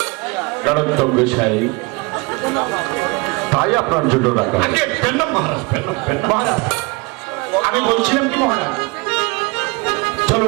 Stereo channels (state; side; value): quieter; left; 27.5 dB